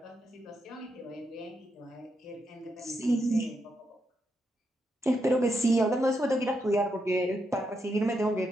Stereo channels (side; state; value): both; normal; correlation 0.82